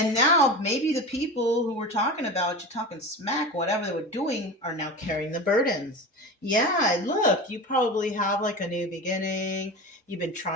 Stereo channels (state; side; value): normal; both; correlation 0.29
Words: now maybe the people who were talking about you, talking smack, whatever they were doing, are now carrying the burdens. Yeah, look, you probably have like a new beginning. You've been